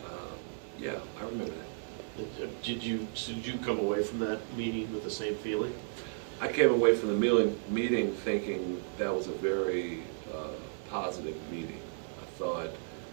yeah, I remember that. Did you come away from that meeting with the same feeling? I came away from the meeting thinking that was a very positive meeting. I thought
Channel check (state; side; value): silent; left; 55 dB below the other